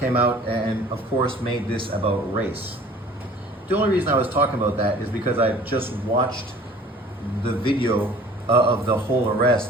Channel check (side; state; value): both; normal; correlation 0.49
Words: out and of course made this about race. The only reason I was talking about that is because I just watched the video of the whole